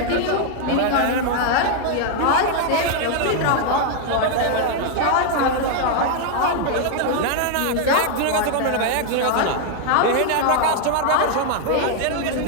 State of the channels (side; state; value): both; different; correlation 0.00